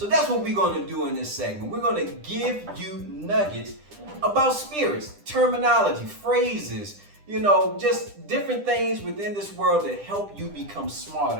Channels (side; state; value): left; late; 10 ms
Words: that's what we're going to do in this segment. We're going to give you nuggets about spirits, terminology, phrases, just different things within this world that help you become